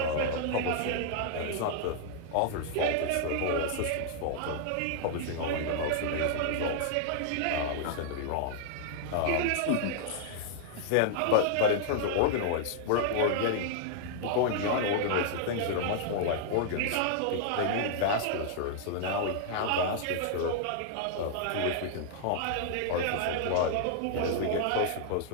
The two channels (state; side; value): different; both; correlation -0.01